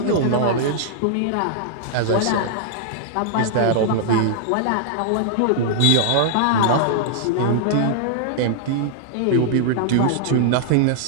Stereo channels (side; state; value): both; different; correlation -0.01